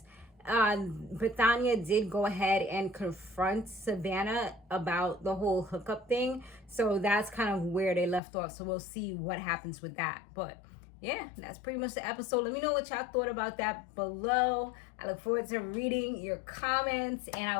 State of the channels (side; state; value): right; drops out; at 8.2 s